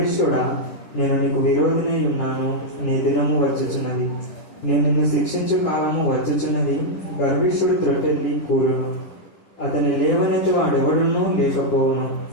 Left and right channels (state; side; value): late; right; 10 ms